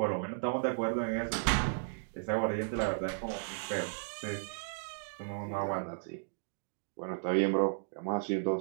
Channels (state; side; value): silent; left; digital silence